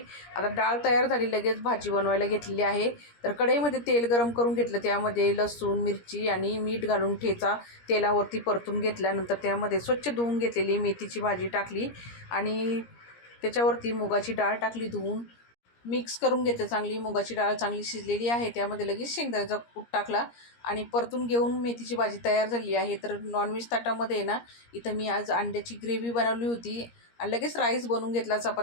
आता डाळ तयार झाली, लगेच भाजी बनवायला घेतलेली आहे. तर कढईमध्ये तेल गरम करून घेतलं, त्यामध्ये लसूण, मिरची आणि मीठ घालून ठेचा तेलावरती परतून घेतल्यानंतर त्यामध्ये स्वच्छ धुवून घेतलेली मेथीची भाजी टाकली आणि त्याच्यावरती मुगाची डाळ टाकली धुवून. मिक्स करून घेते चांगली. मुगाची डाळ चांगली शिजलेली आहे, त्यामध्ये लगेच शेंगदाण्याचा कूट टाकला आणि परतून घेऊन मेथीची भाजी तयार झाली आहे. तर नॉनव्हेज ताटामध्ये ना इथं मी आज अंड्याची ग्रेव्ही बनवली होती आणि लगेच राईस बनवून घेतला,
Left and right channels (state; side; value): late; right; 17 ms